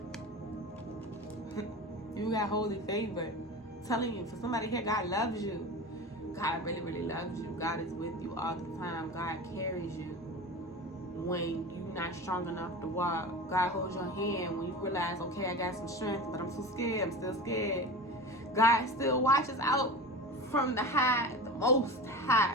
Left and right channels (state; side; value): normal; both; correlation 0.31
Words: You got holy favor. I'm telling you, for somebody here, God loves you. God really, really loves you. God is with you all the time. God carries you when you're not strong enough to walk. God holds your hand when you realize, okay, I got some strength, but I'm so scared. I'm still scared. God still watches out from the high, the most